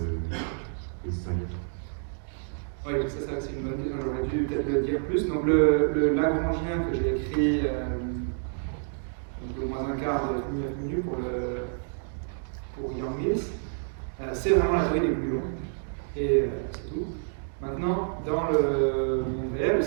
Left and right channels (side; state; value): left; silent; digital silence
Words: distinguer? Oui, ça c'est une bonne question, j'aurais dû peut-être le dire plus. Donc le Lagrangien que j'ai écrit, donc le moins un quart de 9 minutes pour Yang Mills, c'est vraiment la théorie des gluons. Et c'est tout. Maintenant, dans le monde réel,